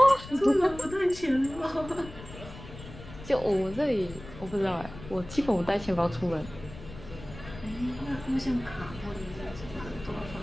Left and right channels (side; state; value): left; noise; rumble, 15 dB below the sound